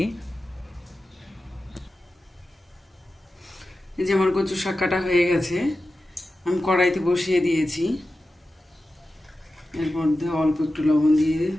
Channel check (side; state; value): both; normal; correlation 0.93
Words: এই যে আমার কচু শাক কাটা হয়ে গেছে, আমি কড়াইতে বসিয়ে দিয়েছি। এর মধ্যে অল্প একটু লবণ দিয়ে